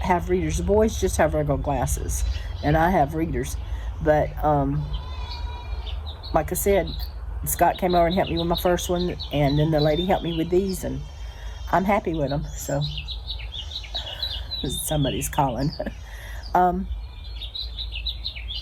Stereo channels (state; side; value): identical; both; correlation 1.00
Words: have readers. The boys just have regular glasses, and I have readers. But like I said, Scott came over and helped me with my first one, and then the lady helped me with these, and I'm happy with them. So somebody's calling. I've